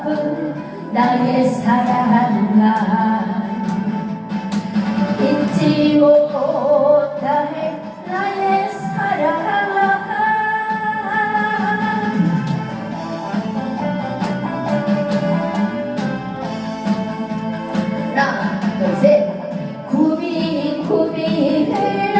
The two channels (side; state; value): both; identical; correlation 1.00